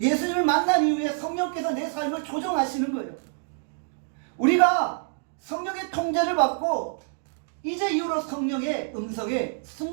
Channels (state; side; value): silent; left; digital silence